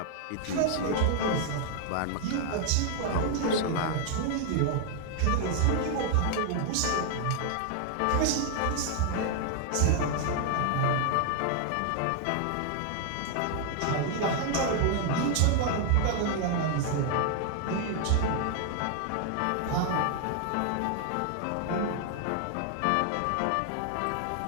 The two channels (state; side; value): different; both; correlation 0.00